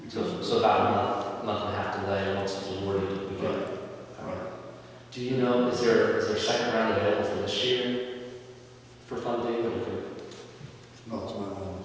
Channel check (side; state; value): both; identical; correlation 1.00